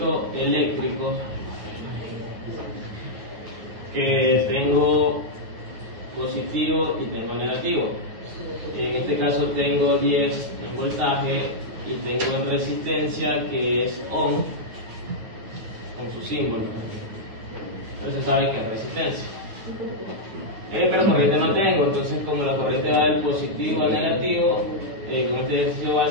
eléctrico que tengo positivo y tengo negativo. En este caso tengo 10 en voltaje y tengo en resistencia, que es Ohm, con su símbolo. Entonces se sabe que es resistencia. Pero corriente no tengo, entonces como la corriente va del positivo al negativo, con este ejercicio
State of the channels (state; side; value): late; left; 9.4 ms